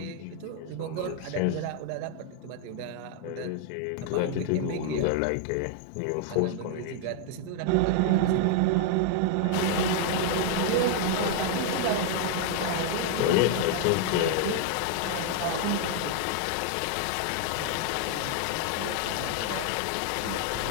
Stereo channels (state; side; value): different; both; correlation 0.00